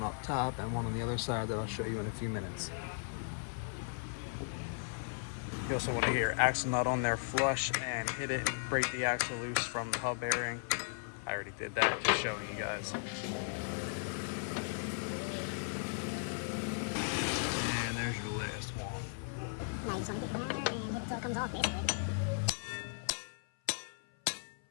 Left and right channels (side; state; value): right; silent; 53 dB below the other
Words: up top, and one on the other side that I'll show you in a few minutes. You also want to get your axle nut on there flush and hit it and break the axle loose from the hub bearing. I already did that, just showing you guys. And there's your last one. Now you just want to get it there and hit it till it comes off, basically.